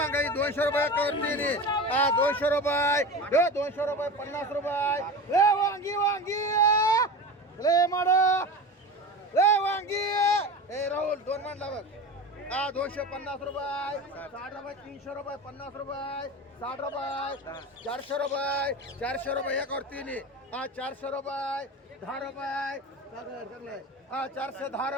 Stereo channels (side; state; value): both; normal; correlation 0.30